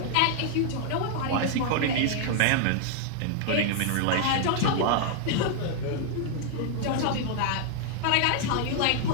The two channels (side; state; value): both; different; correlation 0.00